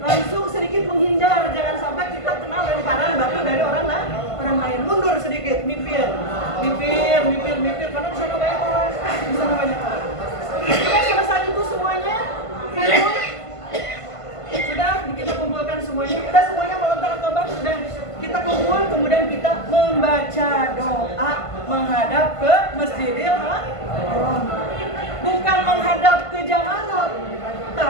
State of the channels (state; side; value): late; right; 1.5 ms